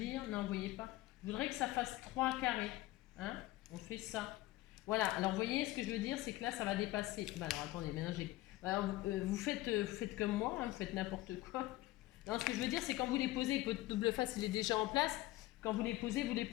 Non, vous voyez pas. Je voudrais que ça fasse 3 carrés. Hein? On fait ça. Voilà. Alors, vous voyez ce que je veux dire? C'est que là, ça va dépasser. Bah, alors, attendez. Maintenant, alors, vous faites comme moi. Hein, vous faites n'importe quoi. Non, ce que je veux dire, c'est quand vous les posez, votre double face, il est déjà en place. Quand vous les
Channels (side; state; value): right; quieter; 17.4 dB